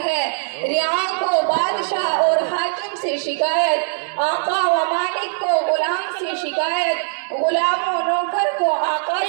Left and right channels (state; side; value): silent; left; digital silence